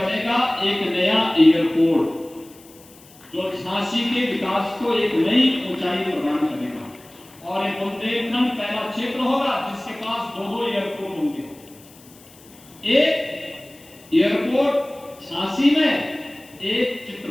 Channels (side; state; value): left; noise; hiss, 24 dB below the sound